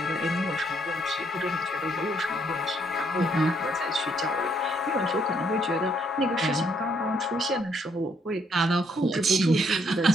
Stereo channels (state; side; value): normal; both; correlation 0.70